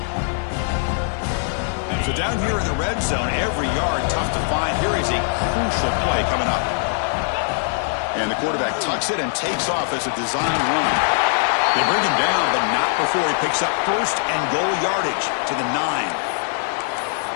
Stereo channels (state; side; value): silent; right; digital silence